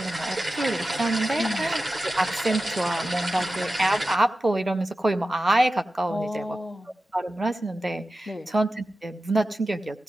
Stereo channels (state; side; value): normal; both; correlation 0.93